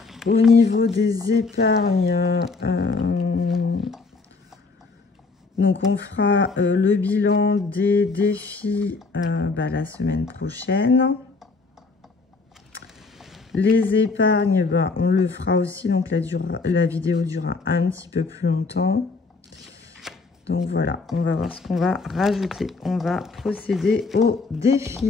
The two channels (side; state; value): right; quieter; 4.1 dB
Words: Au niveau des épargnes, donc on fera le bilan des défis la semaine prochaine. Les épargnes, on le fera aussi, donc la vidéo durera un petit peu plus longtemps. Donc voilà, on va voir ce qu'on va rajouter. On va procéder au